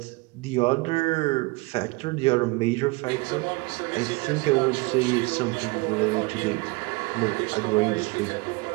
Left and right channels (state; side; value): quieter; left; 25.3 dB